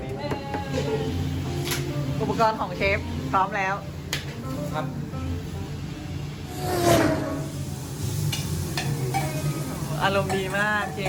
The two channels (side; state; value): both; identical; correlation 1.00